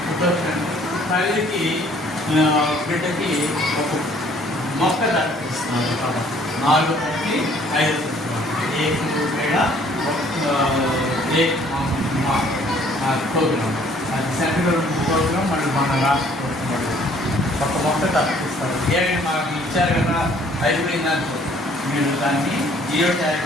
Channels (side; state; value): both; normal; correlation 0.59